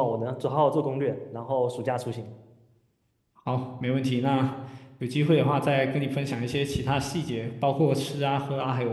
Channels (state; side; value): identical; both; correlation 1.00